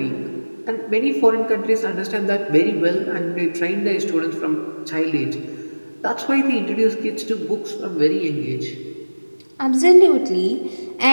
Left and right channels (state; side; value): inverted; both; correlation -1.00